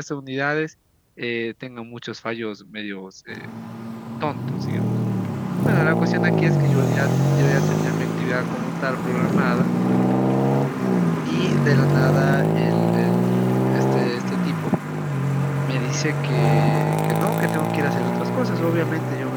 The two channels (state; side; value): identical; both; correlation 1.00